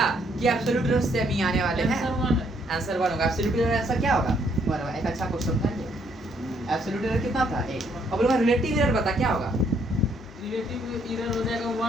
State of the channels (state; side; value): normal; both; correlation 0.70